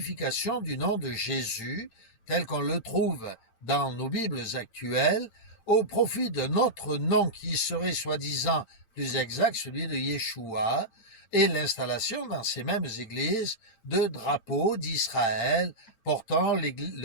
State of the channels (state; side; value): late; right; 8.8 ms